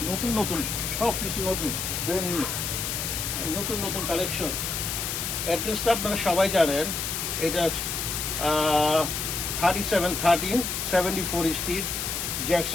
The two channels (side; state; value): left; noise; hiss, 2 dB below the sound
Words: নতুন নতুন সব কিছু নতুন, ব্র্যান্ড নিউ, নতুন নতুন কালেকশন। অ্যাড্রেসটা আপনারা সবাই জানেন, এটা 3713 74 street,